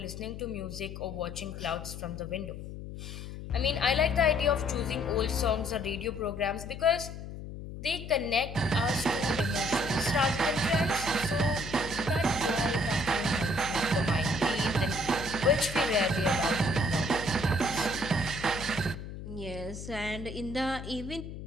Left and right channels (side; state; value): left; noise; hum, 10 dB below the sound